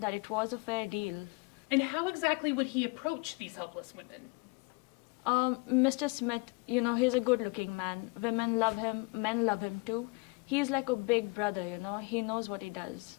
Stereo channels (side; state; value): right; quieter; 27.8 dB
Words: it was a fair deal. And how exactly would he approach these helpless women? Mr. Smith, he's a good-looking man. Women love him, men love him too. He's like a big brother, he knows what he does.